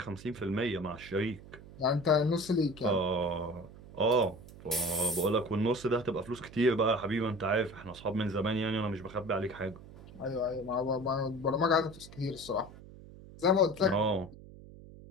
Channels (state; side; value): noise; right; hum, 18 dB below the sound